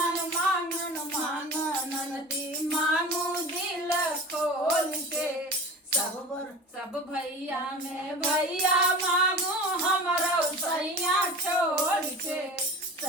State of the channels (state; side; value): normal; both; correlation 0.35